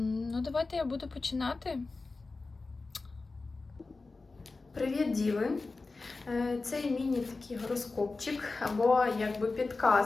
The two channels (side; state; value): right; quieter; 3.7 dB